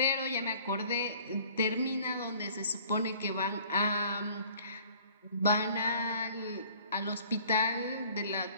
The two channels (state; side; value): inverted; both; correlation -0.53